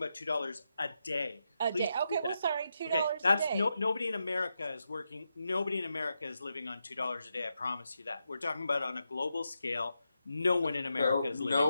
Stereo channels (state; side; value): inverted; both; correlation -0.86